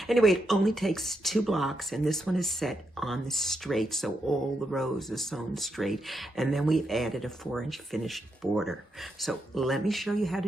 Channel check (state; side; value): normal; both; correlation 0.82